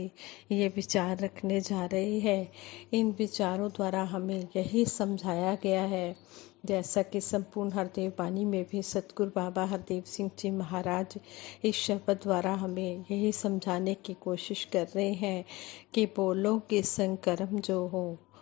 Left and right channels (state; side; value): quieter; right; 20.8 dB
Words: ये विचार रखने जा रहे हैं। इन विचारों द्वारा हमें यही समझाया गया है, जैसा कि संपूर्ण हरदेव वाणी में भी सतगुरु बाबा हरदेव सिंह जी महाराज इस शब्द द्वारा हमें यही समझाने की कोशिश कर रहे हैं कि बोलो कि संग कर्म जो हो